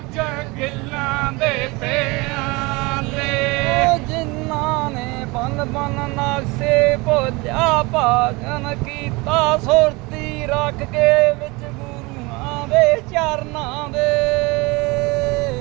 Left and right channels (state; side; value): quieter; left; 24.9 dB